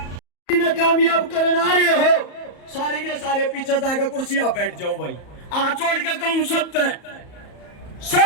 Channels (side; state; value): right; late; 34 ms